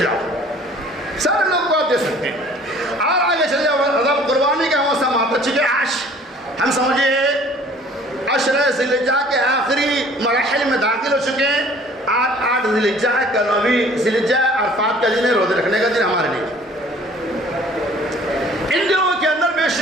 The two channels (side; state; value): both; normal; correlation 0.53